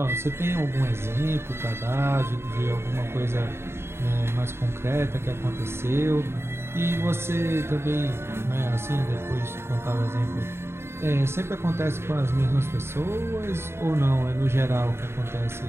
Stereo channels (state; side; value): late; left; 0.12 ms